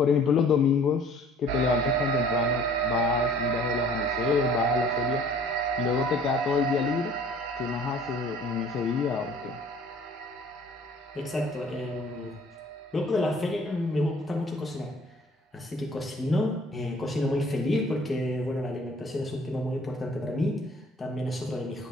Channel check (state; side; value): normal; both; correlation 0.53